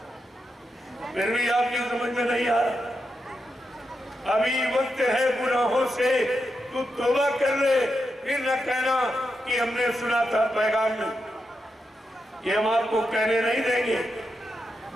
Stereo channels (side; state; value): both; normal; correlation 0.86